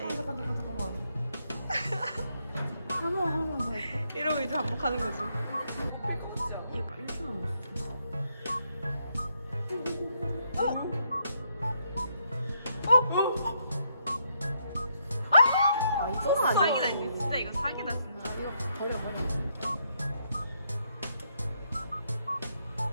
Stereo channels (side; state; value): both; inverted; correlation -0.76